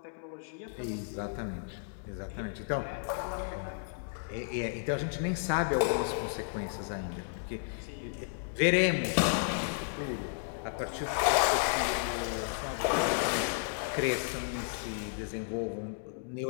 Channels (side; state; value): right; silent; digital silence